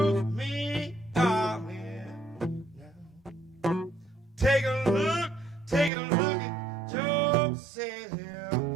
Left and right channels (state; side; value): drops out; left; at 5.9 s